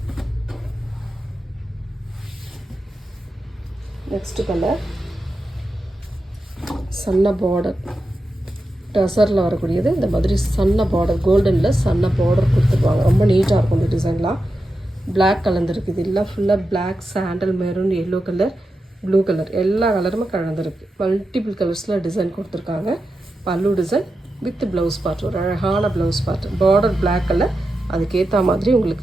நெக்ஸ்ட் கலர் சன்ன பார்டர், டசரில் வரக்கூடியது. இந்த மாதிரி சன்ன பார்டர், கோல்டனில் சன்ன பார்டர் கொடுத்துருவாங்க. ரொம்ப நீட்டாக இருக்கும் இந்த டிசைன்லாம். பிளாக் கலந்துருக்கு. இது எல்லாம் ஃபுல்லாக black, sandal, maroon, yellow colour, blue colour, எல்லா கலருமே கலந்துருக்கு. மல்டிபிள் கலர்ஸில் டிசைன் கொடுத்துருக்காங்க. பல்லு டிசைன் வித் ப்ளவுஸ் பார்ட், ஒரு அழகான blouse part. Border black colour, அதுக்கேற்ற மாதிரி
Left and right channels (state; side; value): normal; both; correlation 0.89